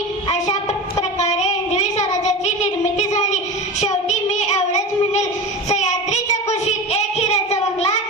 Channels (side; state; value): both; normal; correlation 0.28